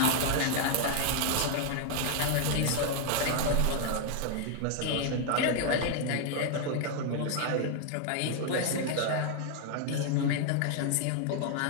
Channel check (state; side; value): different; both; correlation 0.00